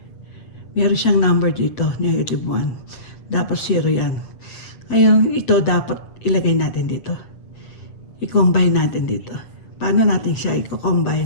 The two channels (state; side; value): late; right; 7.6 ms